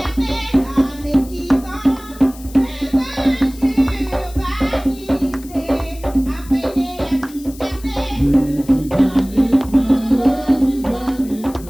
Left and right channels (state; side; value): noise; left; hiss, 20 dB below the sound